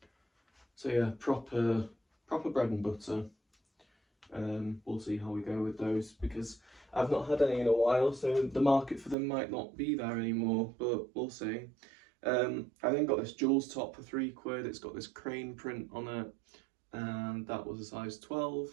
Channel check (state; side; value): drops out; left; at 9.2 s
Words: So yeah, proper bread and butter. We'll see how we go with those, because I've not had any in a while, so the market for them might not be there anymore, but we'll see. I then got this Jules top for £3. It's got this crane print on it, and that was a size